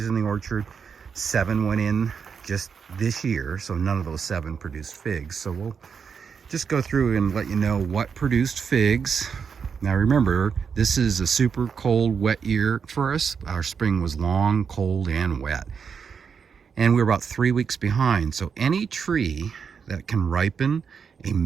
in the orchard. 7 went in just this year, so none of those 7 produced figs. So we'll just go through and let you know what produced figs. Now remember, this is a super cold, wet year for us. Our spring was long, cold, and wet. And we're about 3 weeks behind. So any tree that can ripen a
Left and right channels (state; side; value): quieter; left; 6.4 dB